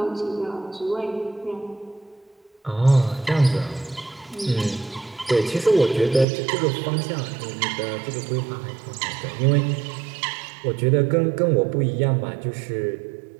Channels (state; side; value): drops out; left; at 6.2 s